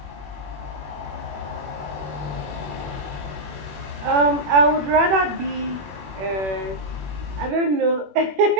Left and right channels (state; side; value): late; left; 21 ms